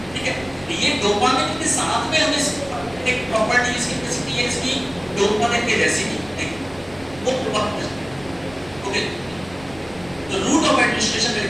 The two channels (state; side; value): noise; right; rumble, 20 dB below the sound